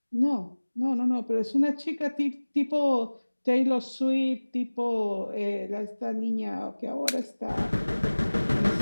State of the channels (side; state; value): both; inverted; correlation -1.00